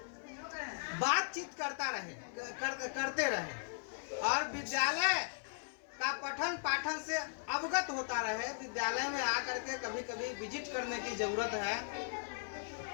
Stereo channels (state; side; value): silent; right; 52 dB below the other